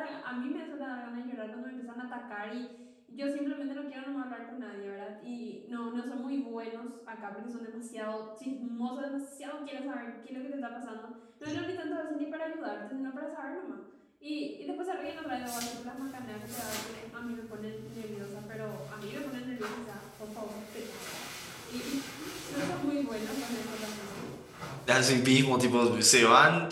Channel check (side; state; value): both; identical; correlation 1.00